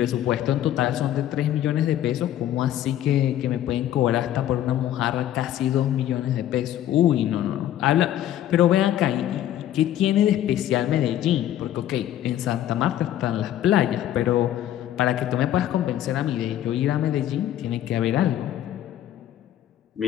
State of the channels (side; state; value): right; quieter; 12.0 dB